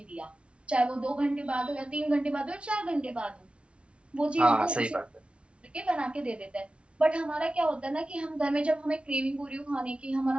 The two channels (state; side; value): late; left; 0.059 ms